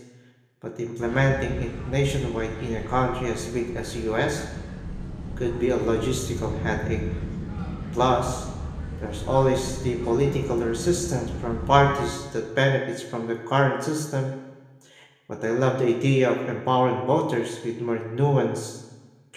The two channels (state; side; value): identical; both; correlation 1.00